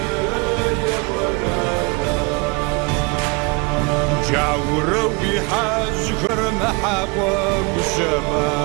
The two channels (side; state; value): left; quieter; 29.3 dB